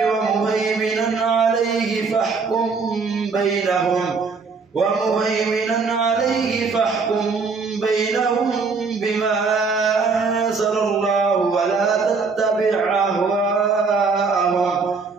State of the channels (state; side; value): quieter; left; 4.7 dB